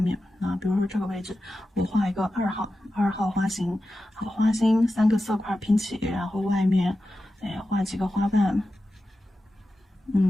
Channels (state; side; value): normal; both; correlation 0.92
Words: 比如说这个位置，我画一个2号花心，好，花心3个色块拼起，然后外面，画几个花瓣，